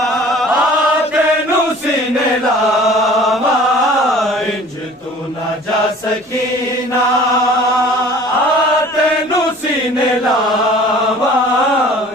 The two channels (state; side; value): normal; both; correlation 0.47